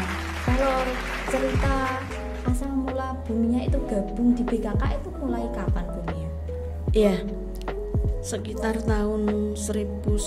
kalau cerita asal mula Bu Mia itu gabung di BKK itu mulai kapan, Bu Mia? Iya, sekitar tahun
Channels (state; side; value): identical; both; correlation 1.00